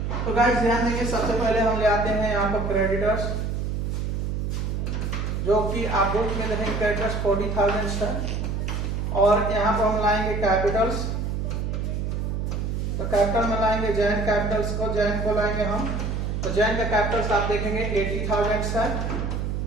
तो गाइस ध्यान देंगे, सबसे पहले हम ले आते हैं यहाँ पर क्रेडिटर्स, जो कि आप बुक में देखेंगे क्रेडिटर्स 40,000 है। और यहाँ पर हम लाएंगे कैपिटल्स, तो कैपिटल में लाएंगे जैन कैपिटल्स को, जैन को लाएंगे हम, तो जैन का कैपिटल्स आप देखेंगे 80,000 है।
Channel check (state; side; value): noise; right; hum, 1 dB below the sound